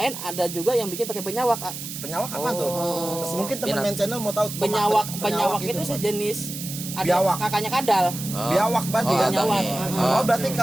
ada juga yang bikin pakai penyawak. Penyawak apa tuh? Mungkin teman main channel mau tahu Penyawak itu sejenis ada Biawak. kakaknya kadal. biawak berarti Oh, kan? Penyawak. abangnya. Oh, berarti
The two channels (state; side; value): noise; right; hiss, 8 dB below the sound